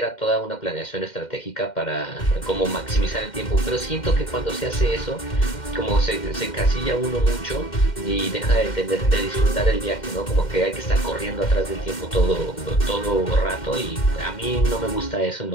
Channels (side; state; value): right; late; 2.1 ms